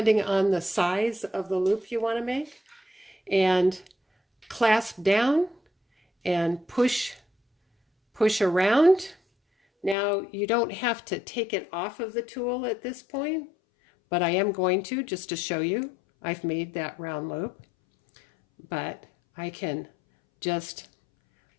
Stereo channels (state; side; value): drops out; right; at 10.0 s